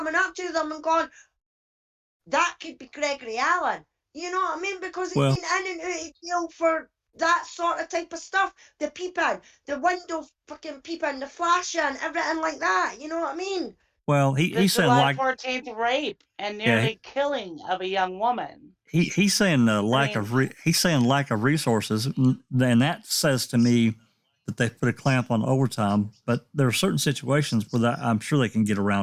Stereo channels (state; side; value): identical; both; correlation 1.00